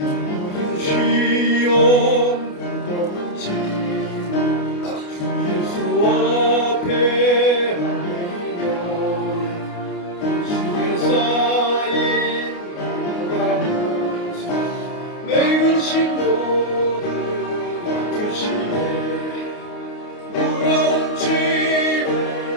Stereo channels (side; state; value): right; late; 29 ms